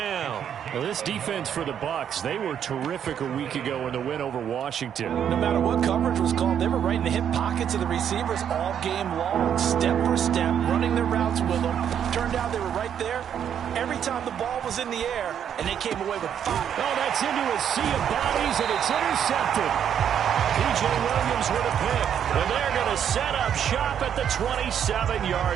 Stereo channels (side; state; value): left; quieter; 8.9 dB